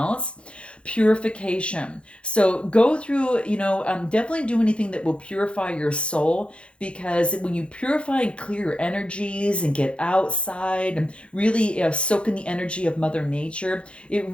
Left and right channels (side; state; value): right; late; 0.058 ms